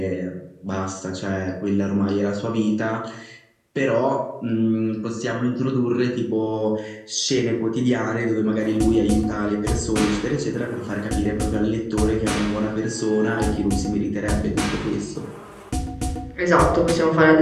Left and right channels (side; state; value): both; identical; correlation 1.00